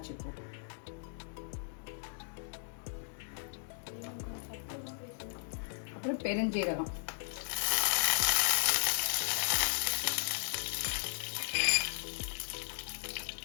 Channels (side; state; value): right; silent; digital silence